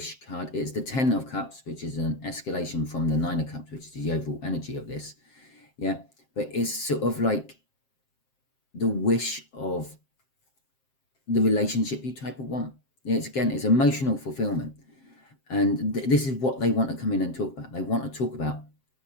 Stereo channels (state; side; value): late; right; 7.6 ms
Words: card. It's the 10 of Cups, which is an escalation from the 9 of Cups, which is the overall energy of this, yeah, but it's sort of like the wish of the relationship you type of want. It's emotional fulfillment. And this is what they want to come in and talk about. They want to talk about